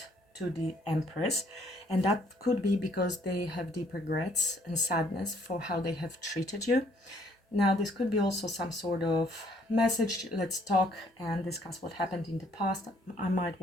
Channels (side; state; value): both; normal; correlation 0.65